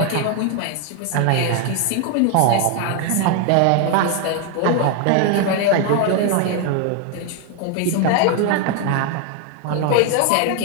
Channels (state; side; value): different; both; correlation 0.01